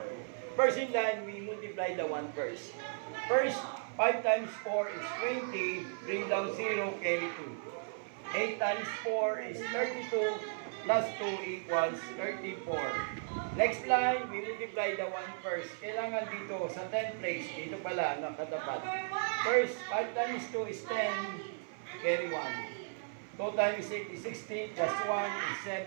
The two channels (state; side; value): silent; left; 54 dB below the other